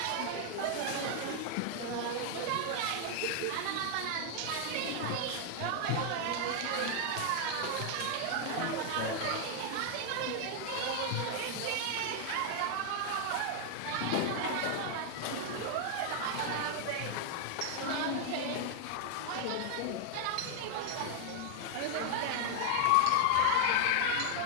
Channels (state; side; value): different; both; correlation 0.00